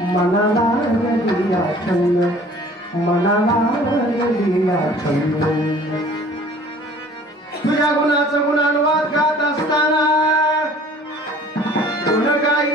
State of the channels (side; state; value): both; normal; correlation 0.50